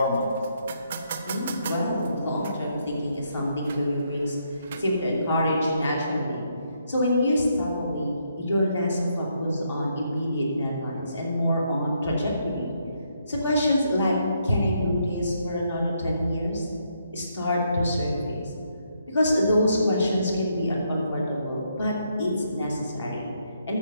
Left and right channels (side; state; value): both; inverted; correlation -0.75